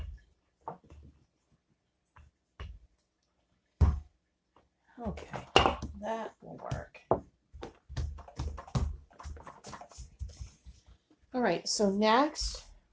Okay, that will work. All right, so next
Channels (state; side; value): identical; both; correlation 1.00